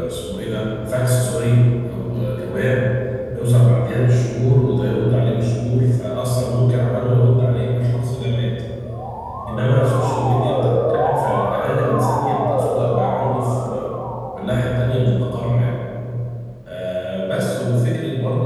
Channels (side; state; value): both; identical; correlation 1.00